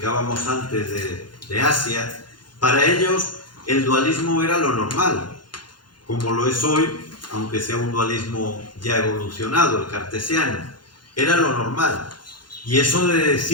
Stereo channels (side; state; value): right; late; 0.71 ms